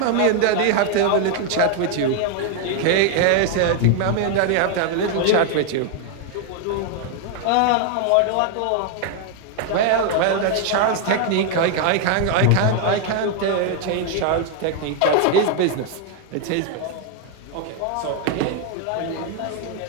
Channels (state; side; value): different; both; correlation 0.00